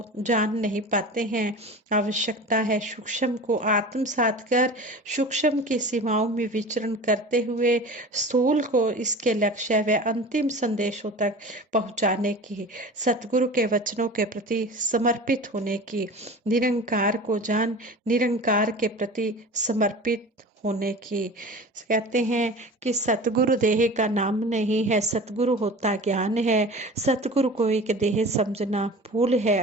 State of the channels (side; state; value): both; normal; correlation 0.36